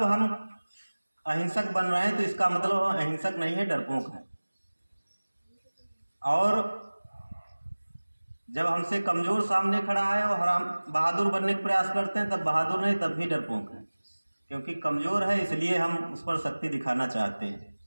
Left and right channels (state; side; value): inverted; both; correlation -1.00